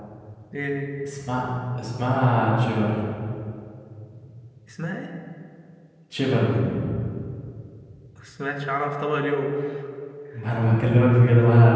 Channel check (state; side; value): identical; both; correlation 1.00